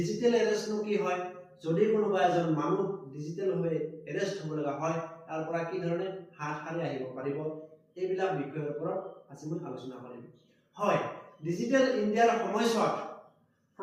এৰেষ্টনো কি হয়, যদি কোনোবা এজন মানুহ ডিজিটেলভাৱে এৰেষ্ট হ'ব লগা হয়, তাৰ পৰা কি ধৰণে হাত সাৰি আহিব পাৰিব, এইবিলাক বিষয়ৰ ওপৰত আজি মই আলোচনা কৰিম। হয়, ডিজিটেল ইণ্ডিয়াৰ সময়ছোৱাত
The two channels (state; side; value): identical; both; correlation 1.00